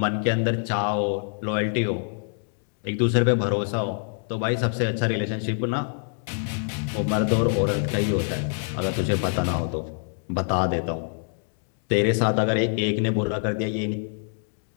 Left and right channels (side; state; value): right; silent; digital silence